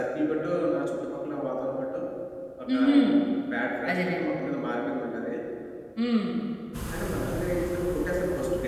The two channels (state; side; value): identical; both; correlation 1.00